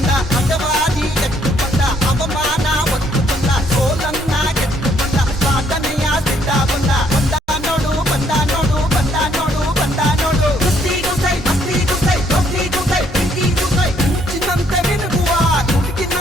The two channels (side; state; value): both; normal; correlation 0.68